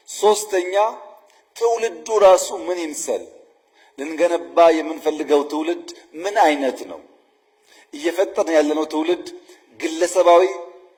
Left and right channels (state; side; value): identical; both; correlation 1.00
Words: ሶስተኛ ትውልዱ ራሱ ምን ይምሰል? ልንገነባ የምንፈልገው ትውልድ ምን አይነት ነው? እየፈጠርን ያለነው ትውልድ ግለሰባዊ፣